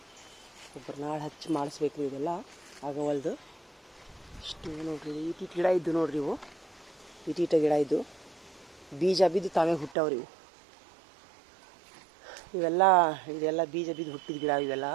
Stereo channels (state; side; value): drops out; left; at 10.0 s